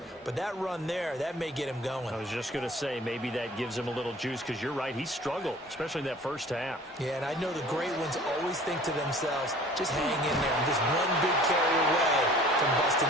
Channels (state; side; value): normal; both; correlation 0.49